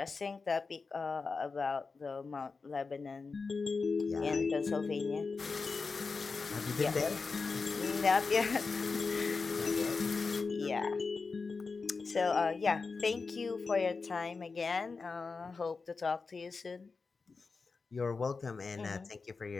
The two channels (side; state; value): right; quieter; 4.5 dB